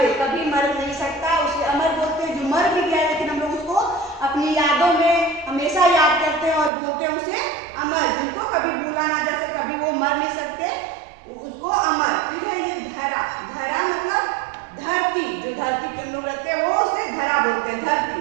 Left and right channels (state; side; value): drops out; left; at 6.7 s